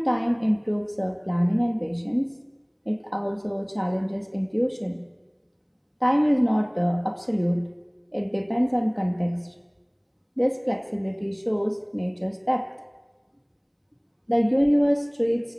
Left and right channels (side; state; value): both; identical; correlation 1.00